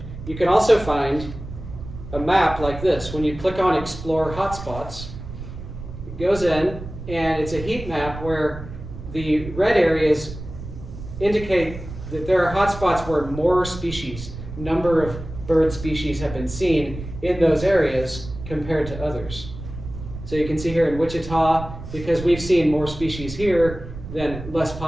you can also find a map like this. When you click on Explore Hotspots, it goes in, and it's a heat map where the red areas indicate that there are hotspots where more species, number of bird species have been seen in those areas compared to others. So you can see here in Wichita, because we've seen more species here than less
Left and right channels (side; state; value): right; noise; rumble, 11 dB below the sound